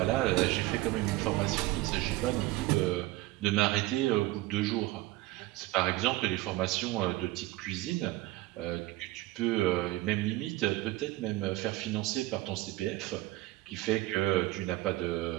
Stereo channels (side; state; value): left; quieter; 18.2 dB